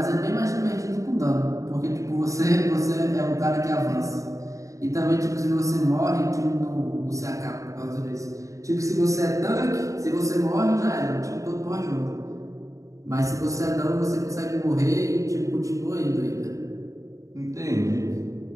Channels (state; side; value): late; left; 0.16 ms